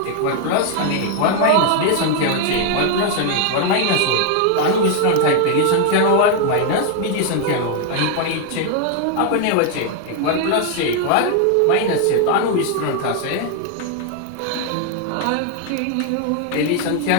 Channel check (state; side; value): different; both; correlation 0.01